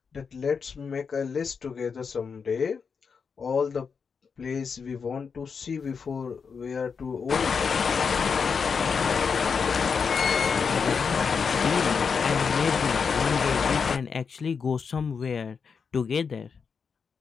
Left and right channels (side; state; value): right; quieter; 5.8 dB